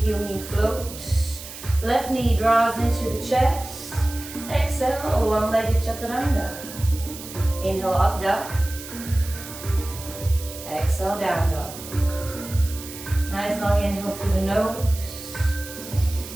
heel, knee float. Left knee draws into the chest. Exhale, one-legged chaturanga. Inhale, up dog. Exhale, down dog. Nice long inhale through the nose.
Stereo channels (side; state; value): right; noise; hiss, 13 dB below the sound